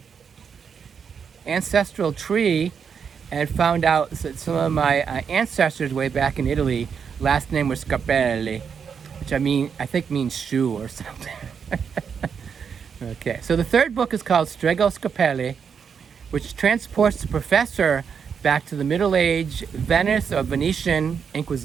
ancestral tree and found out that some of my ancestors way back in Italy, last name was Scarpelli, which I think means shoe or something. Okay, so the 3rd book is called Strego Scarpelli, which transports the professor back to the Middle Age Venice or Venetian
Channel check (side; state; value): left; quieter; 6.7 dB